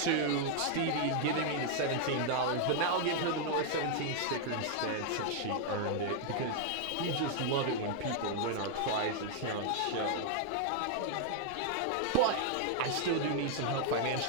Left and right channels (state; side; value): different; both; correlation 0.00